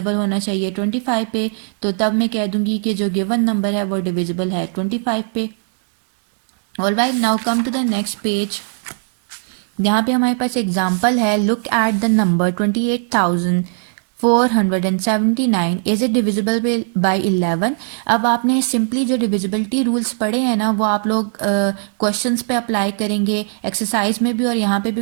होना चाहिए 25 पे, तो तब मैं कह दूंगी कि जो गिवन नंबर है वो डिविजिबल है 25 पे। Alright, now come to the next page. यहाँ पे हमारे पास एग्जाम्पल है, look at the number 28,479 is it divisible by 11। अब आपने सिंपली जो डिविजिबिलिटी रूल्स पढ़े हैं ना वो आप लोग क्वेश्चंस पे अप्लाई करेंगे, एक्सरसाइज में भी और यहाँ पे भी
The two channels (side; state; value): left; silent; digital silence